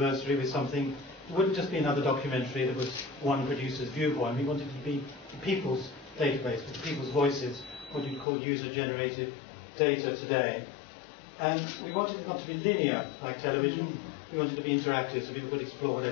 with something. It wouldn't just be another documentary that was one producer's viewpoint. We wanted it to be the people's database, with the people's voices, what you'd call user-generated data today. And we wanted it not to be linear like television. We wanted it to be interactive so people could explore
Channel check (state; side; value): drops out; right; at 8.2 s